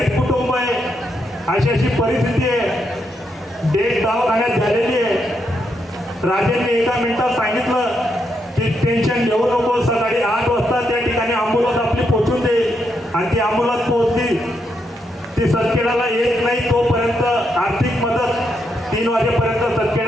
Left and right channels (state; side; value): normal; both; correlation 0.80